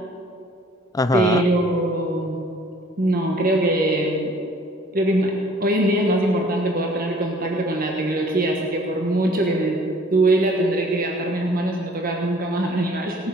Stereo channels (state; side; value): normal; both; correlation 0.55